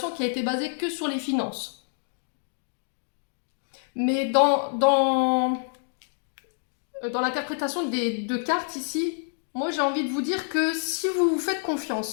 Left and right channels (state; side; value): silent; right; digital silence